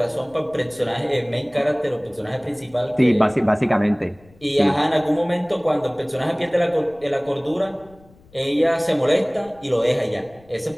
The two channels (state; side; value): noise; left; rumble, 27 dB below the sound